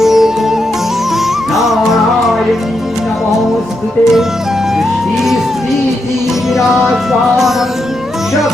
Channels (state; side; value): normal; both; correlation 0.83